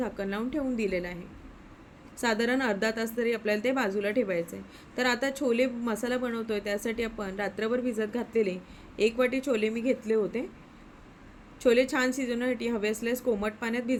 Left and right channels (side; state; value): both; identical; correlation 1.00